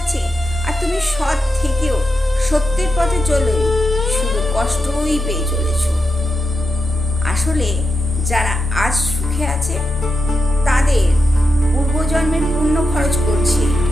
আর তুমি সৎ থেকেও সত্যের পথে চলে শুধু কষ্টই পেয়ে চলেছ। আসলে যারা আজ সুখে আছে তাদের পূর্বজন্মের পুণ্য খরচ করছে।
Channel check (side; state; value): both; normal; correlation 0.87